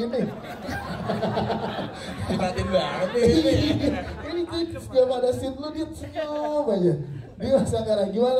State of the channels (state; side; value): identical; both; correlation 1.00